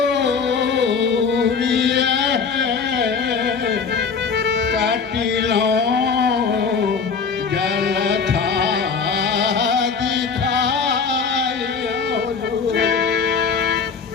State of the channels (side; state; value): right; quieter; 5.6 dB